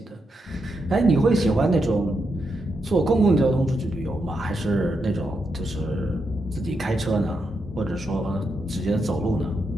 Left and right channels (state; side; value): normal; both; correlation 0.83